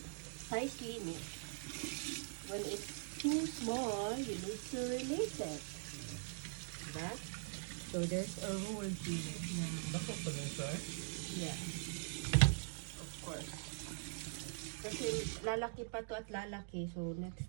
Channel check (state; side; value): silent; left; digital silence